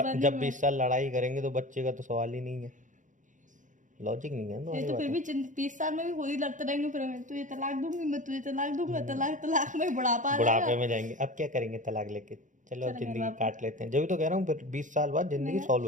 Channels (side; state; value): left; late; 0.37 ms